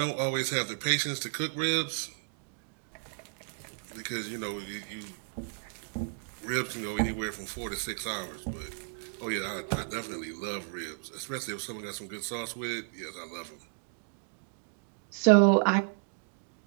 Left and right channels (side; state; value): left; silent; digital silence